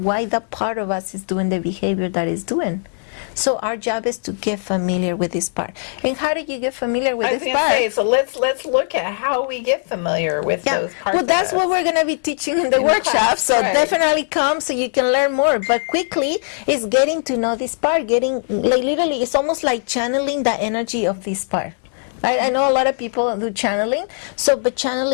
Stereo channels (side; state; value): right; silent; 66 dB below the other